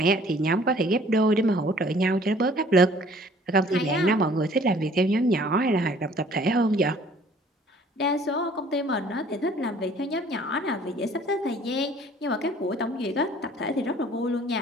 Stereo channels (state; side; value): normal; both; correlation 0.55